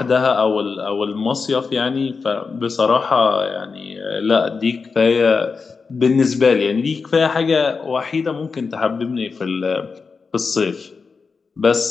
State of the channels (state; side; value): quieter; right; 4.9 dB